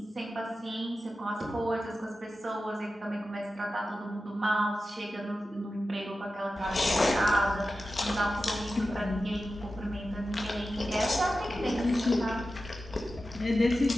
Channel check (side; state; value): both; normal; correlation 0.93